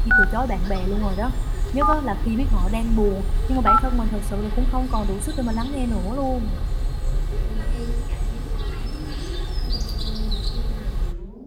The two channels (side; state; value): both; identical; correlation 1.00